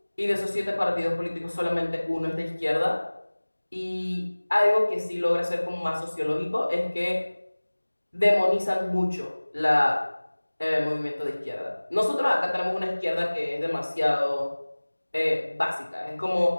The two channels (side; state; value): both; inverted; correlation -1.00